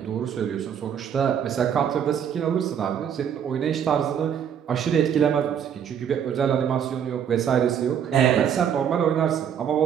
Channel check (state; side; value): quieter; left; 8.5 dB